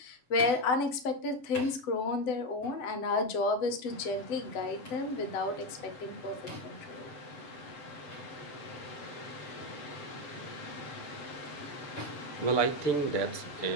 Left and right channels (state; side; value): late; right; 7.9 ms